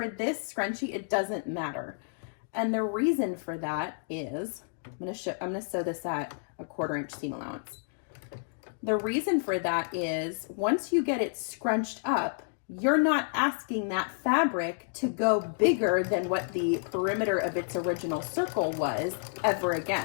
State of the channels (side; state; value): right; silent; digital silence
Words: this scrunchie, it doesn't matter. And the reason for that is, I'm going to sew this at a 1/4 inch seam allowance. The reason for that is once you get it scrunched up, you're not asking that fabric to go bigger than what the perimeter of its original circle was ever